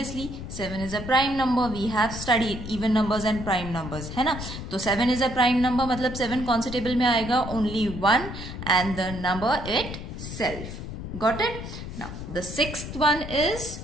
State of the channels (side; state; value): left; noise; rumble, 9 dB below the sound